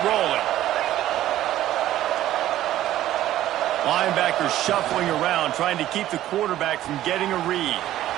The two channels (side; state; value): left; quieter; 13.5 dB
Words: rolling. Linebacker shuffling around, trying to keep the quarterback from getting a read.